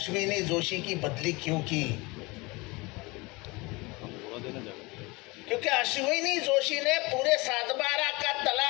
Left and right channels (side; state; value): right; quieter; 24.8 dB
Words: जोशी की बदली क्यों की? क्योंकि अश्विनी जोशी ने पूरे 7/12 का